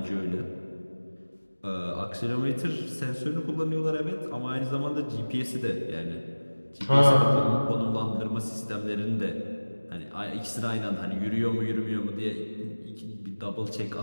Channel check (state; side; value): inverted; both; correlation -1.00